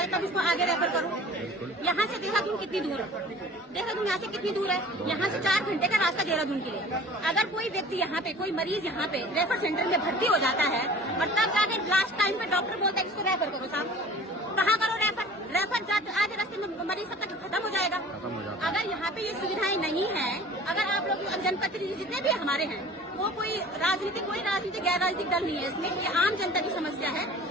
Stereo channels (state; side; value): normal; both; correlation 0.45